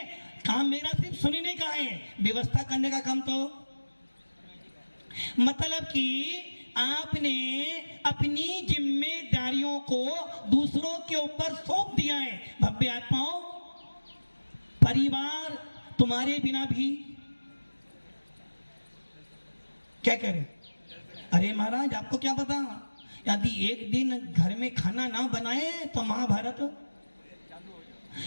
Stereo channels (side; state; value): both; inverted; correlation -1.00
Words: काम मेरा सिर्फ सुनने का है, व्यवस्था करने का काम तो, मतलब कि आपने अपनी जिम्मेदारियों को दूसरों के ऊपर सौंप दिया है। भव्य आत्माओं, परिवार तुम्हारे बिना भी क्या करें? अरे महाराज आपको क्या पता, यदि एक दिन घर में खाना ना बनाए तो महाभारत,